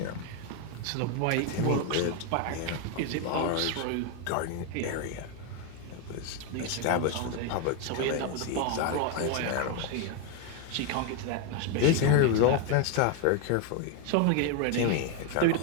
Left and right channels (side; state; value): both; different; correlation 0.01